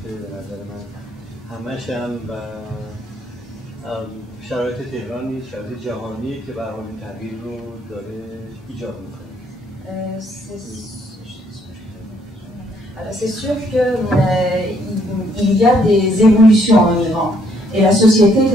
به نظر من همش هم و شرایط تهران نیست شرایط جهانیه که به هر حال این تغییر رو داره ایجاد میکنه. C'est sûr qu'il y a des évolutions en Iran et la société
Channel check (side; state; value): both; normal; correlation 0.68